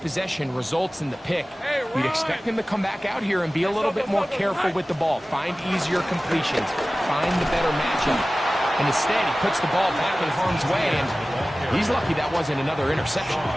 results in the pick. We'd expect him to come back out here and be a little bit more careful with the ball, find easier completions, find the better matchup. And instead, he puts the ball back in harm's way, and he's lucky that wasn't another interception.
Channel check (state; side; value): normal; both; correlation 0.97